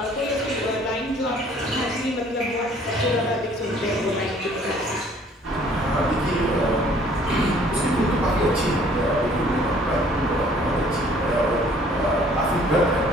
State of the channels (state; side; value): normal; both; correlation 0.57